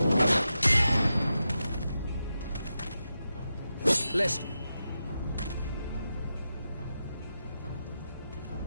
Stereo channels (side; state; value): both; inverted; correlation -0.89